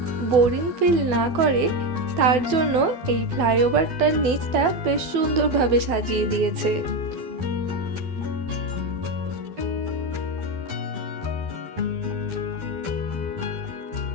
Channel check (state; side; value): late; left; 12 ms